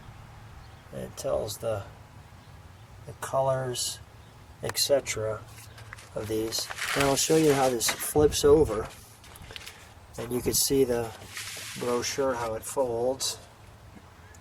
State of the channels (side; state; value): both; identical; correlation 1.00